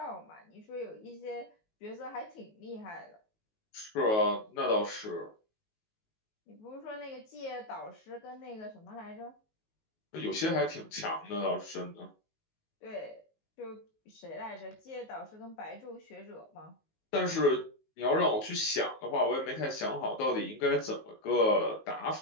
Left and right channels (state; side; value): late; right; 19 ms